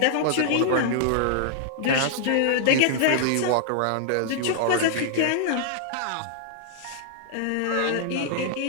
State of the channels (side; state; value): both; different; correlation -0.01